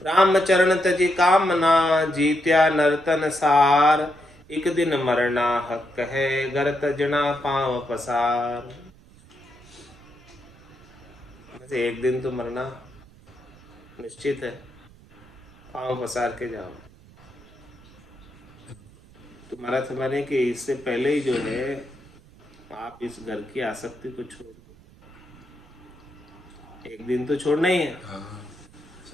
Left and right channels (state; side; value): noise; right; rumble, 25 dB below the sound